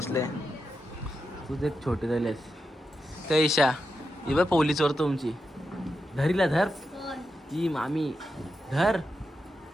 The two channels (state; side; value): normal; both; correlation 0.87